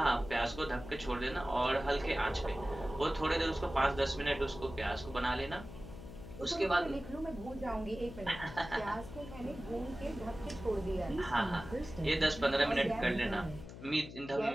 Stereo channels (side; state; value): left; noise; hum, 13 dB below the sound